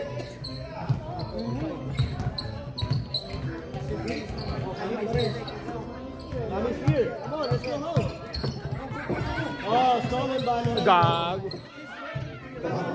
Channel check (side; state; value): both; identical; correlation 1.00